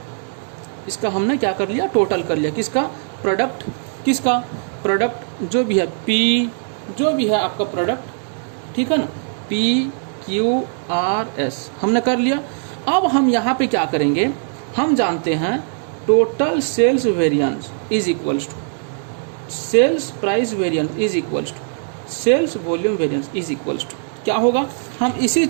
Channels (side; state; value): left; silent; 64 dB below the other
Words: इसका हमने क्या कर लिया, टोटल कर लिया। किसका, प्रोडक्ट, किसका प्रोडक्ट, जो भी है पी, जो भी है आपका प्रोडक्ट, ठीक है ना, PQRS हमने कर लिया। अब हम यहाँ पे क्या करेंगे, हम जानते हैं total sales variance is equals to sales price variance is equals to sales volume variance is equals to क्या होगा, हम इसी